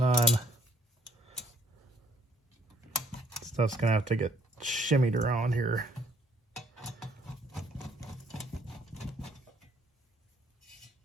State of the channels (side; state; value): both; normal; correlation 0.64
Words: Stuff's going to have to get shimmied around here.